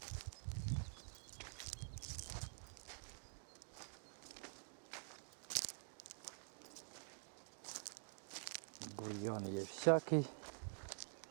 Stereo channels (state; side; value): silent; left; digital silence